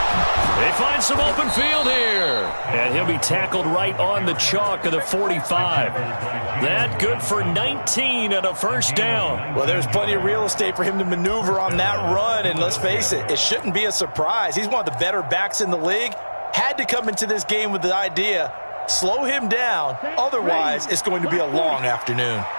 They find some open field here. And he'll be tackled right on the chalk of the 45. That good for 19 and a first down. Well, there's plenty of real estate for him to maneuver on that run. And let's face it, it shouldn't be a surprise. He's one of the better backs in the league. Had to come into this game with the idea, slow him down. Otherwise, it's going to be a long afternoon.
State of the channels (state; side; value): inverted; both; correlation -1.00